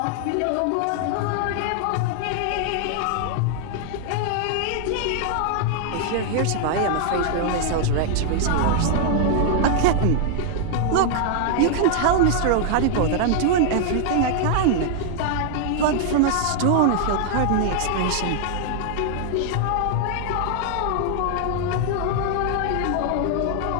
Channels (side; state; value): both; different; correlation 0.00